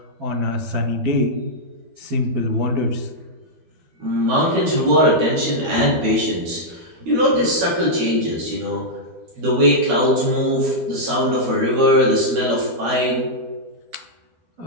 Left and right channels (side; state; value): left; late; 12 ms